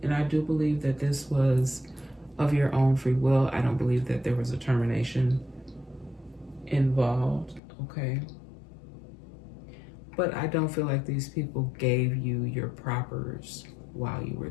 and I do believe that this was of your own free will. I don't believe that there was a termination involved, okay? But I don't feel like these people gave you your propers while you were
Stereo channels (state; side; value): drops out; right; at 7.6 s